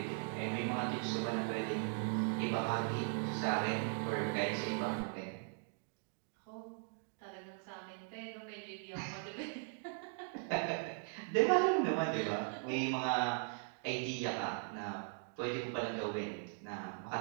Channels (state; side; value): silent; left; 52 dB below the other